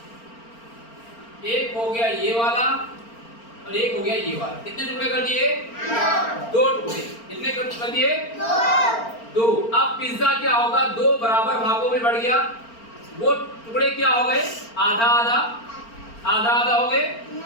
गया ये वाला और एक हो गया ये वाला। कितने टुकड़े कर दिए? दो टुकड़े। कितने कर दिए? दो। अब पिज्जा क्या होगा, दो बराबर भागों में बढ़ गया। वो टुकड़े क्या हो गए? आधा आधा, आधा आधा हो गए।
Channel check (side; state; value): right; late; 4.4 ms